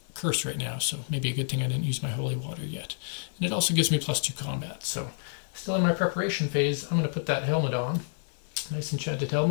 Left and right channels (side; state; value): right; silent; digital silence